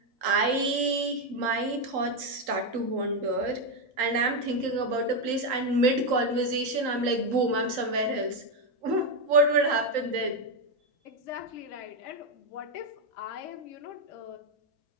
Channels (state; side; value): late; left; 3.8 ms